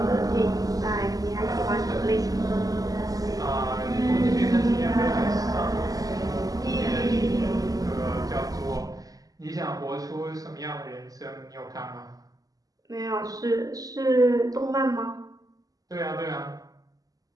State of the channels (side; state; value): left; late; 0.17 ms